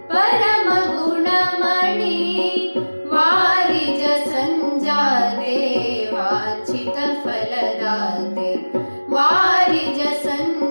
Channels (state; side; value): inverted; both; correlation -1.00